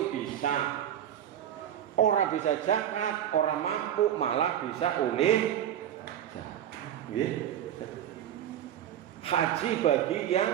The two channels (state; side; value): quieter; left; 10.6 dB